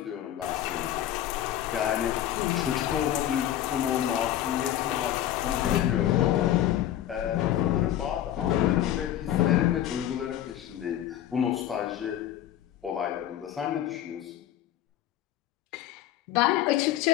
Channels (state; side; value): quieter; right; 12.1 dB